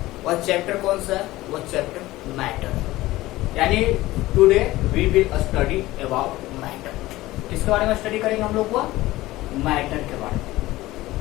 वह चैप्टर कौन सा है? वो चैप्टर मैटर। यानी today we will study about matter. किसके बारे में स्टडी करेंगे हम लोग? वह मैटर के बारे में।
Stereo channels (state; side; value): quieter; right; 17.7 dB